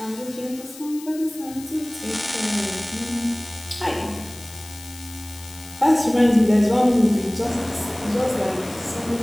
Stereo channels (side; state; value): left; noise; hiss, 17 dB below the sound